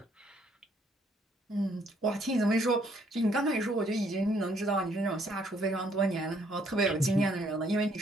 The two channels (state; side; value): normal; both; correlation 0.67